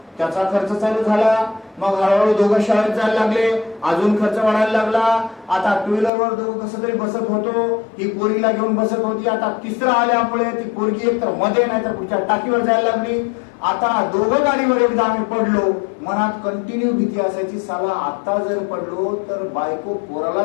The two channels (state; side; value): drops out; right; at 6.1 s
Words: त्याचा खर्च चालू झाला. मग हळूहळू दोघं शाळेत जायला लागले, अजून खर्च वाढायला लागला. आता 2 व्हीलरवर दोघं कसं तरी बसत होतो, ही पोरीला घेऊन बसत होती. आता तिसरा आल्यामुळे ती पोरगी एक तर मध्ये नाही तर पुढच्या टाकीवर जायला लागली. आता दोघं गाडीवर एकदा आम्ही पडलो, मनात कंटिन्यू भीती असायची, साला आता जर पडलो तर बायको पोराला